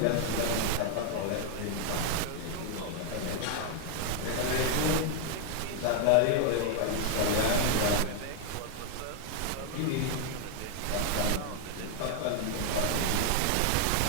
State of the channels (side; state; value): both; different; correlation 0.00